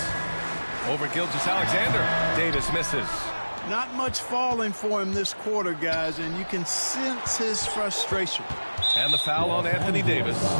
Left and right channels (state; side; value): inverted; both; correlation -1.00